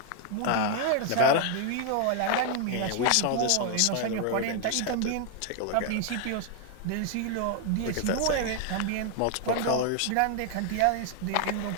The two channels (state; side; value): different; both; correlation 0.00